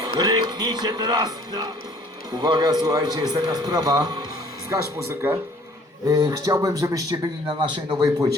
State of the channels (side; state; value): both; normal; correlation 0.55